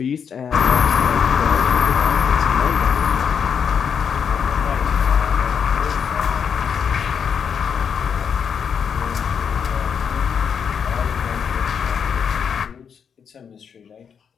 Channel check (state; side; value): quieter; right; 7.1 dB